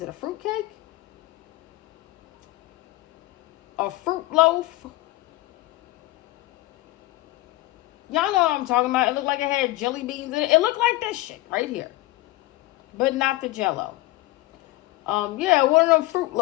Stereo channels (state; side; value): quieter; right; 18.6 dB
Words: it, a fruit cake? A fruit loaf? Y'all know what I'm talking about. It looked like it had jelly beans in it. It looked like this shit right here. But not the Jell-O. Yeah, one of them fruit